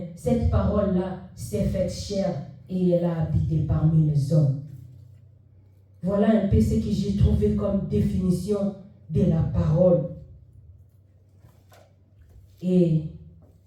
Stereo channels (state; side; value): identical; both; correlation 1.00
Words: cette parole-là s'est faite chair et elle a habité parmi les hommes. Voilà un peu ce que j'ai trouvé comme définition de la parole. Et